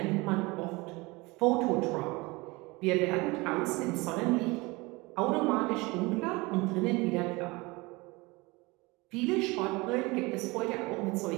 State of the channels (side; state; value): left; quieter; 24.1 dB